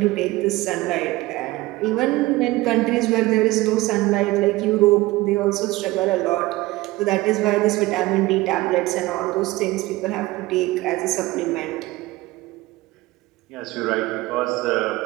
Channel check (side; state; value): left; quieter; 19.4 dB